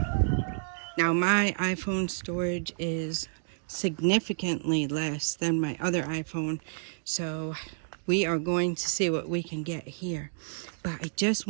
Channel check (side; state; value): left; silent; digital silence